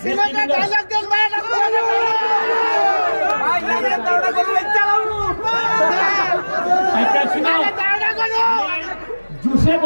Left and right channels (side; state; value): both; inverted; correlation -1.00